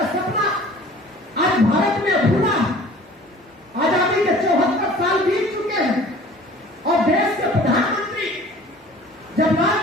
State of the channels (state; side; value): normal; both; correlation 0.47